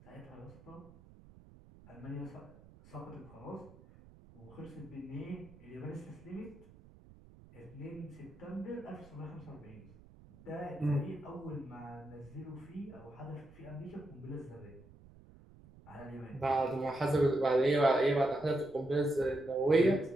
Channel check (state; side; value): noise; right; rumble, 22 dB below the sound